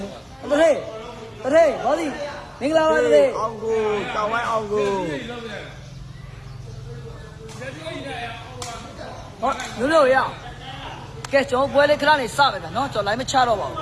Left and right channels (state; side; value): identical; both; correlation 1.00